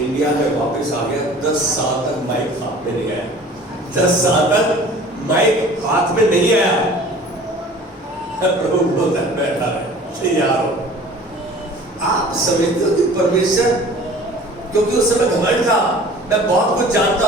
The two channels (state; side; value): normal; both; correlation 0.46